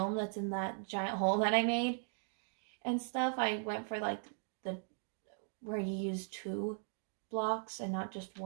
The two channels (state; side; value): silent; left; 52 dB below the other